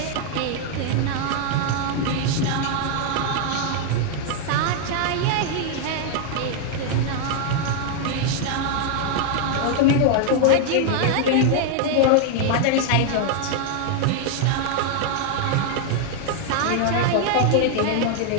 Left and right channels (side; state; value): both; different; correlation 0.00